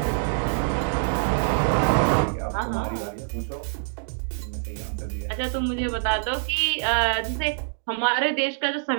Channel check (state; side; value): silent; left; digital silence